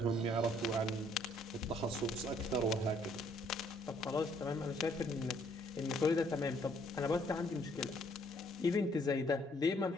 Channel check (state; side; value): normal; both; correlation 0.66